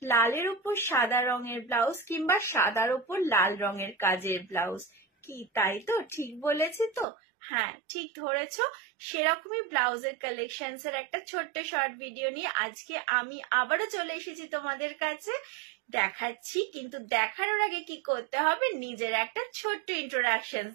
লালের উপর সাদা রঙের ব্লাউজ কিংবা সাদার উপর লাল রঙের কাজের ব্লাউজ। কি তাই তো? ঠিক বলেছি তো? হ্যাঁ, ঠিক ধরেছ। সেরকমই ব্লাউজের কালেকশনস এর একটা ছোট্ট শর্ট ভিডিও নিয়ে আজকে আমি আবারও চলে এসেছি তোমাদের কাছে। দেখাচ্ছি, কিন্তু দেখানোর আগে কি করতে হবে, নিজের একটা ছোট্ট ইন্ট্রোডাকশন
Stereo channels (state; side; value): drops out; left; at 7.1 s